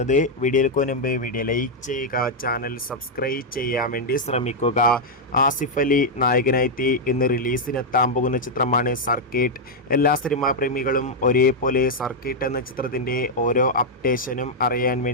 വീഡിയോയിലേക്ക് മുൻപ് വീഡിയോ ലൈക്ക് ചെയ്യുക, ചാനൽ സബ്സ്ക്രൈബ് ചെയ്യാൻ വേണ്ടി ശ്രമിക്കുക. ആസിഫ് അലി നായകനായി ഇന്ന് റിലീസിനെത്താൻ പോകുന്ന ചിത്രമാണ് സർക്കിട്ട്. എല്ലാ സിനിമാ പ്രേമികളും ഒരേപോലെ സർക്കിട്ട് എന്ന ചിത്രത്തിന്റെ ഓരോ അപ്ഡേഷനും അറിയാൻ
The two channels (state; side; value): normal; both; correlation -0.03